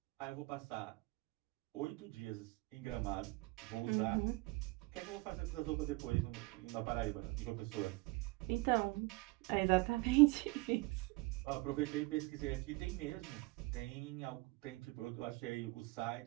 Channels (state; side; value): quieter; left; 23.9 dB